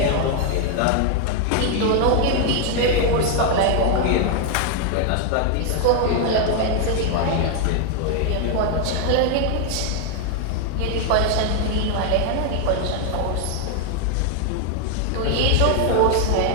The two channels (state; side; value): different; both; correlation 0.00